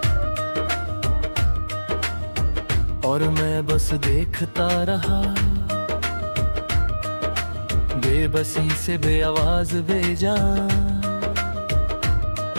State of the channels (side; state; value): both; inverted; correlation -1.00